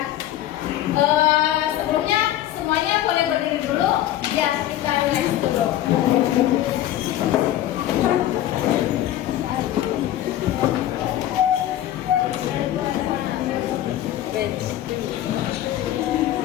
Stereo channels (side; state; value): right; quieter; 13.1 dB